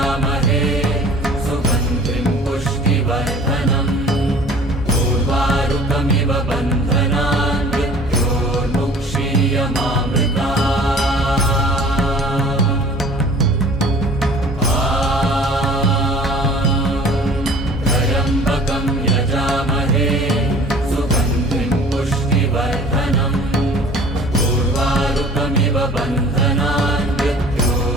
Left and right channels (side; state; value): both; normal; correlation 0.48